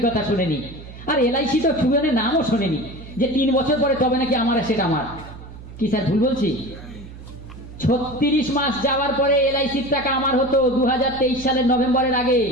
কথা শোনেনি, আর এলআইসি তো সুবেনের নামও শোনেনি, যে 3 বছর পরে তবে নাকি আমার অ্যাসেট আমার। কি স্যার ভুল বলছি? 36 মাস যাওয়ার পরে এলআইসির টাকা আমার হতো 2023 সালের নভেম্বরের আগে,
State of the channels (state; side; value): noise; right; hum, 15 dB below the sound